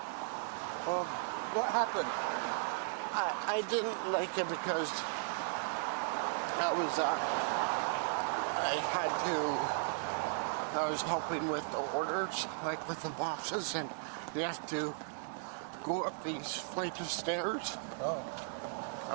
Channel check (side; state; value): left; silent; digital silence